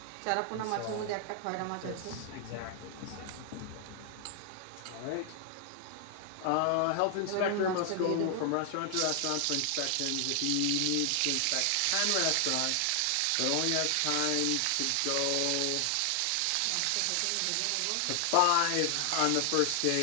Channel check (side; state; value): both; different; correlation 0.00